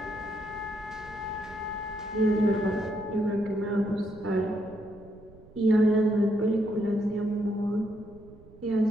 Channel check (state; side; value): noise; right; rumble, 22 dB below the sound